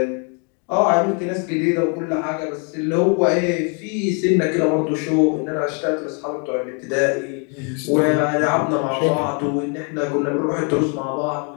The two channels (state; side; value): quieter; right; 38.1 dB